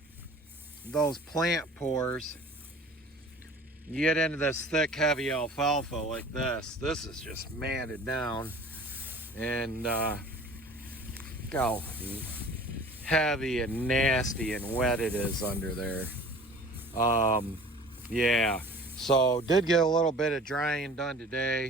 those plant pores. You get into this thick, heavy alfalfa like this. This is just matted down, and look how heavy and nasty and wet it is under there. Yeah, so did get a little bit of drying done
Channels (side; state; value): both; normal; correlation 0.45